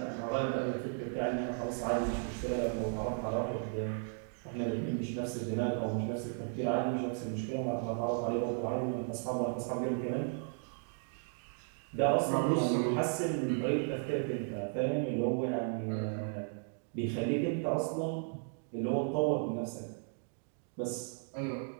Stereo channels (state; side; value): silent; left; 54 dB below the other